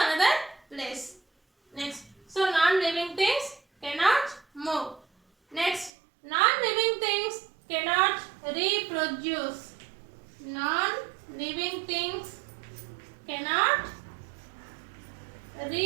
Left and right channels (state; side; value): drops out; left; at 5.9 s